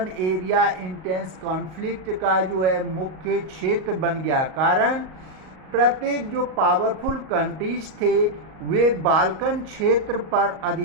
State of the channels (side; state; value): left; late; 38 ms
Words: एरिया इंटेंस कॉन्फ्लिक्ट का जो है मुख्य क्षेत्र बन गया। कारण प्रत्येक जो पावरफुल कंट्रीज थे वे बाल्कन क्षेत्र पर